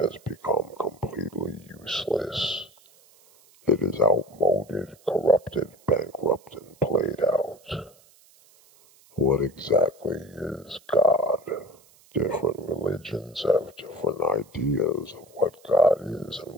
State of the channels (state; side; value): noise; right; hiss, 29 dB below the sound